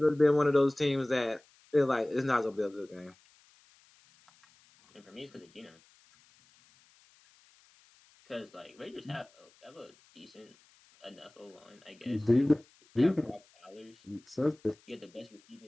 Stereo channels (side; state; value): left; noise; hiss, 30 dB below the sound